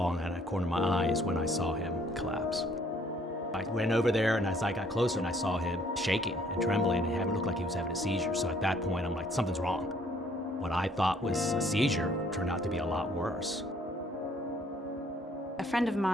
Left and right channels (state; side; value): normal; both; correlation 0.63